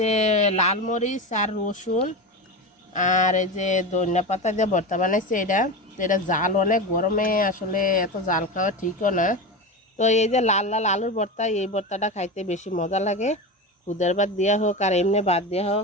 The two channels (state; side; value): normal; both; correlation 0.23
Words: লাল মরিচ আর রসুন আর এই যে ধনিয়া পাতা দিয়ে ভর্তা বানাইছে এটা। তো এটা জাল অনেক, গরমে আসলে এত জাল খাওয়া ঠিকও না। তো এই যে লাল লাল আলুর ভর্তা, এই ভর্তাটা খাইতে বেশি মজা লাগে, খুদের ভাত দেওয়া হোক আর এমনি ভাত দেওয়া